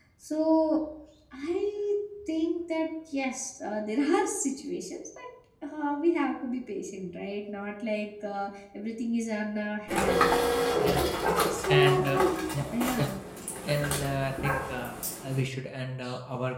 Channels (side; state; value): both; identical; correlation 1.00